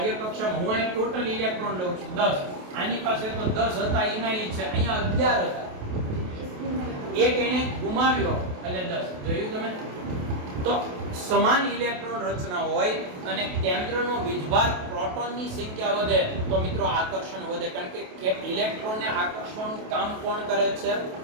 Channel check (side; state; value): left; late; 28 ms